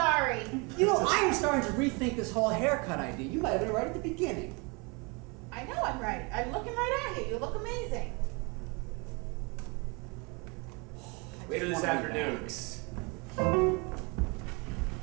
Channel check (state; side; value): quieter; left; 29.9 dB